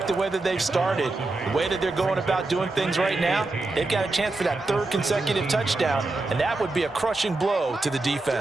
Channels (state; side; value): quieter; left; 3.1 dB